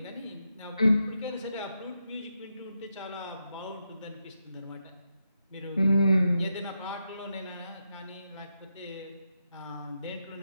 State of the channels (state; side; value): inverted; both; correlation -0.85